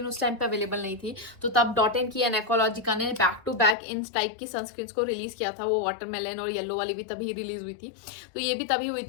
उस टाइम पे अवेलेबल नहीं थी, तो तब डॉट एंड की एंड एक्वालॉजिका ने बैक टू बैक इन टाइप की सनस्क्रीन्स को रिलीज किया था. वो वाटरमेलन और येलो वाली भी तभी रिलीज हुई थी, तो ये भी तभी हुई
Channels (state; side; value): drops out; right; at 3.8 s